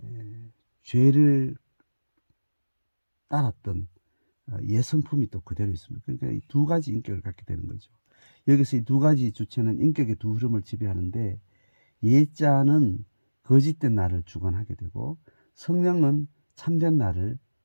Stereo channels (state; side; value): inverted; both; correlation -1.00